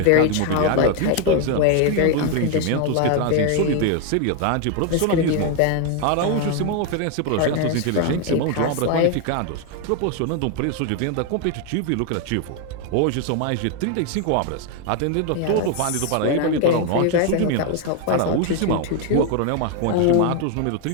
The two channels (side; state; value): both; different; correlation 0.01